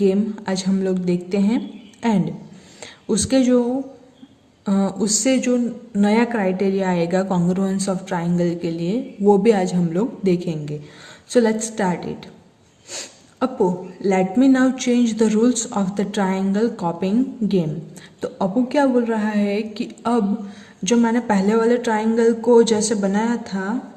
आज हम लोग देखते हैं एंड उसके जो उससे जो नया क्राइटेरिया आएगा कॉन्ग्रुएंस ऑफ ट्राइंगल के लिए वो भी आज हम लोग देखेंगे. So let's start it. Apu, let me now change the rules of the triangle copying game. तो अपू क्या बोल रहा है कि अब जो मैंने पहले वाले ट्राइंगल को जैसे बनाया था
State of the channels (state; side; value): identical; both; correlation 1.00